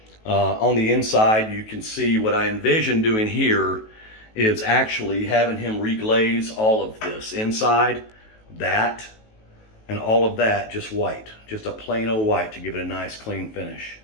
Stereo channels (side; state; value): right; late; 18 ms